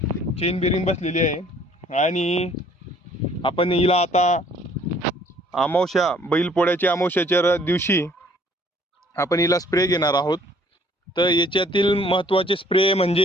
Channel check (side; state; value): both; normal; correlation 0.59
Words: चेन बेरिंग बसलेली आहे। आणि आपण हिला आता अमावस्या, बैलपोळ्याच्या अमावस्याच्या दिवशी आपण हिला स्प्रे घेणार आहोत। तर याच्यातील महत्त्वाचे स्प्रे